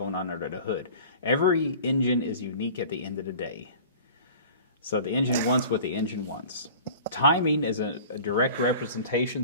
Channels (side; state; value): both; inverted; correlation -0.43